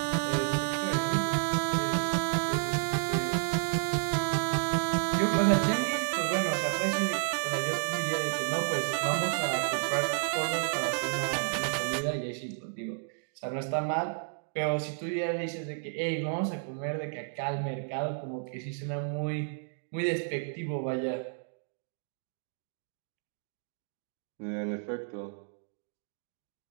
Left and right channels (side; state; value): left; silent; digital silence